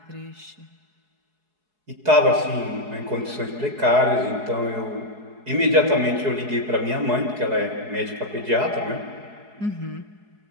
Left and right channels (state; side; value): late; left; 4.7 ms